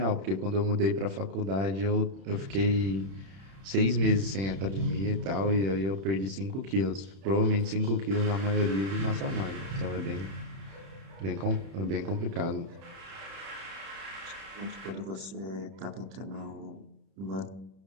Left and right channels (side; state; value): left; late; 31 ms